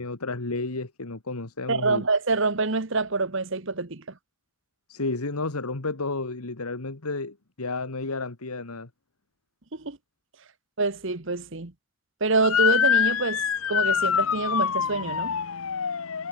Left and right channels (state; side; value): normal; both; correlation -0.10